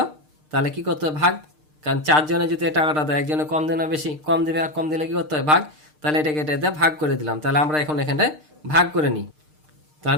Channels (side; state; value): left; late; 6.6 ms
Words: তাহলে কি করতে হবে, ভাগ। কারণ 4 জনে যদি এই টাকাটা দেয়, একজনে কম দেয় না বেশি, কম দেবে, আর কম দিলে কি করতে হয়, ভাগ। তাহলে এটাকে এটা ভাগ করে দিলাম। তাহলে আমরা এখন এখানে ভাগ করে নিই।